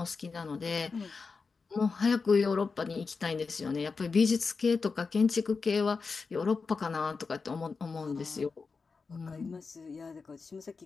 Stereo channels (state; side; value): quieter; right; 4.7 dB